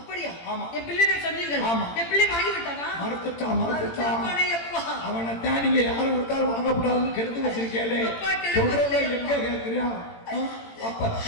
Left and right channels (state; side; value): late; right; 18 ms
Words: ஆமா. என் பிள்ளை சொன்னீர்கள். ஆமா. என் பிள்ளை வாங்கி விட்டானா? மறுத்துட்டான். அவனை தான் நீங்க யாரும் விட்டாலும் வாங்கக்கூடாதுன்னு கெடுத்து வச்சிருக்கேளே, சொல்றத எங்க கேட்கிறியா? அப்ப